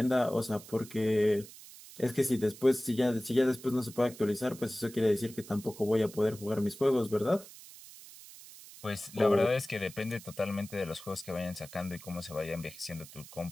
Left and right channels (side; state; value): right; noise; hiss, 17 dB below the sound